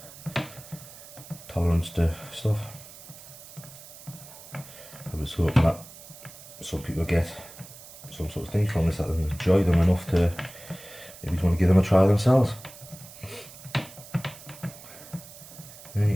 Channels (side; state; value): right; noise; hiss, 17 dB below the sound